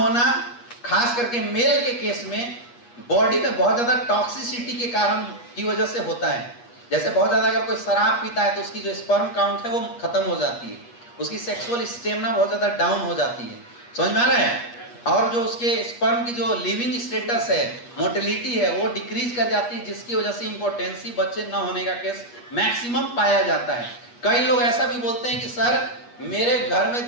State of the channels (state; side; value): late; right; 8.4 ms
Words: खास करके मेल के केस में बॉडी में बहुत ज्यादा टॉक्सिसिटी के कारण की वजह से होता है। जैसे बहुत ज्यादा अगर कोई शराब पीता है तो उसकी जो स्पर्म काउंट है वो खत्म हो जाती है, उसकी सेक्सुअल स्टेमिना बहुत ज्यादा डाउन हो जाती है। समझ में आ रहा है? और जो उसके स्पर्म की जो लिविंग स्टेटस है, मोटिलिटी है, वो डिक्रीज कर जाती है, जिसकी वजह से इंपोर्टेंसी, बच्चे न होने का केस मैक्सिमम पाया जाता है। कई लोग ऐसा भी बोलते हैं कि सर मेरे घर में